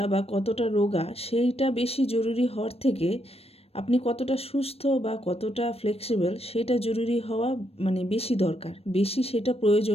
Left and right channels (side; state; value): right; late; 0.29 ms